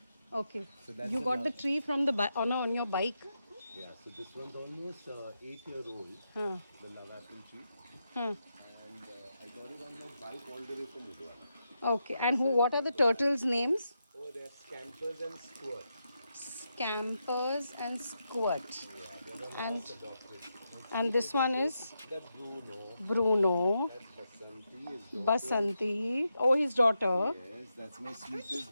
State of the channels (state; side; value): inverted; both; correlation -0.85